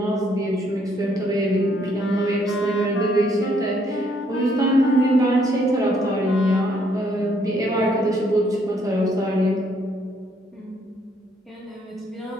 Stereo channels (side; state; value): both; normal; correlation 0.68